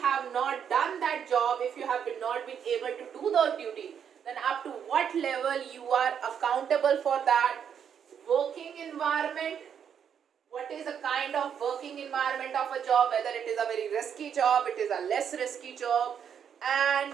not done that job, if you have not been able to do the duty, then up to what level you are accountable for that. Working environment, what is the kind of working environment of a job, whether it is a very risky job, it is a less risky job, and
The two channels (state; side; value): quieter; left; 8.0 dB